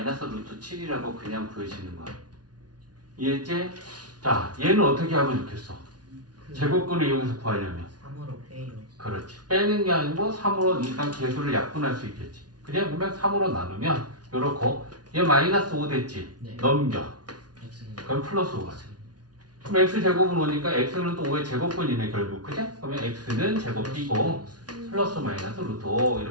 루트 7이라고 그냥 구해지는 거야. 이해했지? 자, 얘는 어떻게 하면 좋겠어? 제곱근을 이용해서 구하려면 3으로 빼요. 그렇지. 빼는 게 아니고 3으로 일단 개수를 약분할 수 있겠지. 그냥 보면 3으로 나누면 요렇고 얘 마이너스 5 됐지? 네. 넘겨. x는 그럼 플러스 5가 돼. 그럼 x제곱은 오니까 x는 또 5의 제곱근이네 결국. 그죠? 그러면 x는 제곱 띄고 플러스 마이너스 루트 5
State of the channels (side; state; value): left; late; 0.69 ms